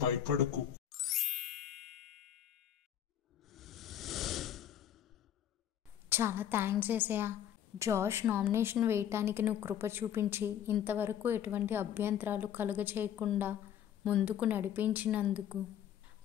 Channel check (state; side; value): quieter; right; 10.1 dB